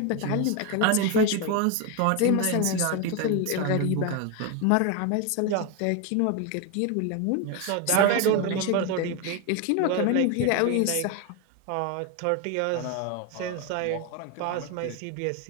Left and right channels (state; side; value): different; both; correlation 0.02